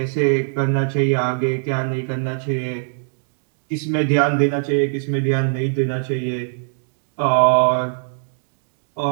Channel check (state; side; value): silent; left; digital silence